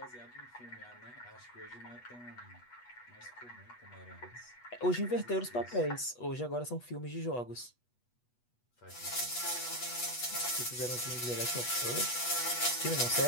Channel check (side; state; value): right; late; 8.2 ms